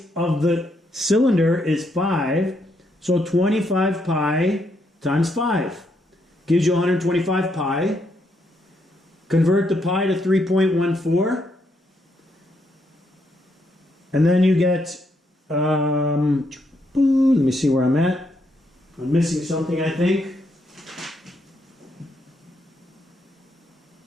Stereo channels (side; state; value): both; normal; correlation 0.76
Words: of the cylinder is 5. So 25 pi times 5 gives you 125 pi. Convert the pi to 3.14. And then you get, let me see where I'm at. I'm missing something, I think.